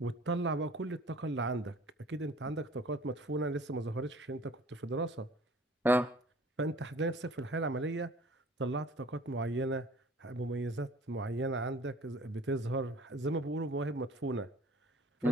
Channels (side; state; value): both; normal; correlation 0.49